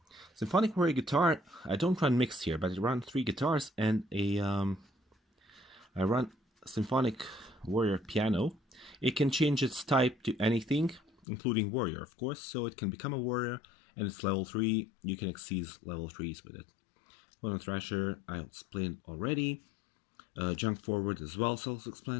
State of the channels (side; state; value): right; drops out; at 11.2 s